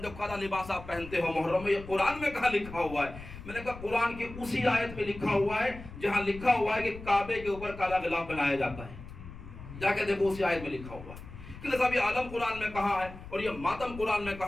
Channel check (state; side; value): noise; left; rumble, 14 dB below the sound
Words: ہو، کالا لباس آپ پہنتے ہو محرم میں، یہ قرآن میں کہاں لکھا ہوا ہے؟ میں نے کہا قرآن کی اسی آیت میں لکھا ہوا ہے جہاں لکھا ہوا ہے کہ کعبے کے اوپر کالا غلاف بنایا جاتا ہے، جا کے دیکھو اسی آیت میں لکھا ہوا ہے۔ کہ صاحب یہ عالم قرآن میں کہاں ہے، اور یہ ماتم قرآن میں